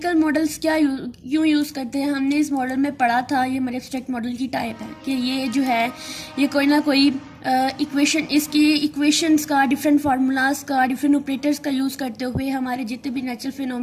मॉडल्स क्यों यूज़ करते हैं, हमने इस मॉडल में पढ़ा था। ये हमारे एब्स्ट्रैक्ट मॉडल की टाइप है कि ये जो है ये कोई ना कोई इक्वेशन, इसकी इक्वेशंस का, डिफरेंट फार्मूलाज का, डिफरेंट ऑपरेटर्स का यूज़ करते हुए हमारे जितने भी नेचुरल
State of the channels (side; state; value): both; identical; correlation 1.00